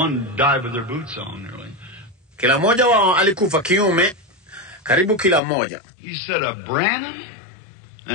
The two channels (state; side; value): drops out; right; at 5.4 s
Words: died with their boots on, nearly. Kila mmoja wao alikufa kiume, karibu kila mmoja. He said, "A Branham